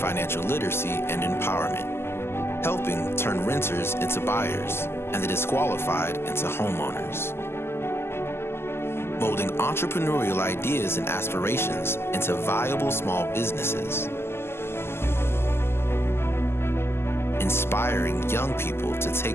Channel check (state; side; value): late; right; 0.12 ms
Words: literacy and empowerment, helping turn renters into buyers and the disqualified into homeowners, molding entrepreneurial ideas and aspirations into viable small businesses, inspiring young people to take